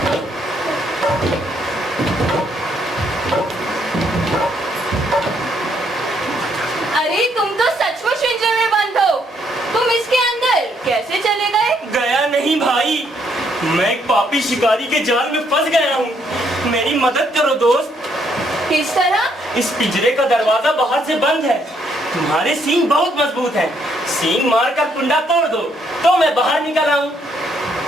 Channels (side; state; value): both; normal; correlation 0.71